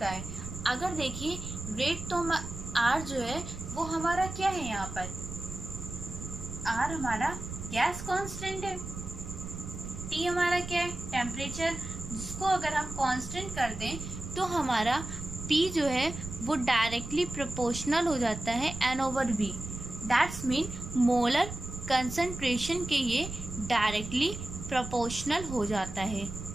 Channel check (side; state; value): right; noise; rumble, 9 dB below the sound